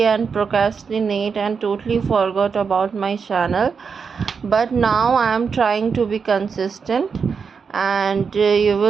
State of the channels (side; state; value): left; quieter; 5.8 dB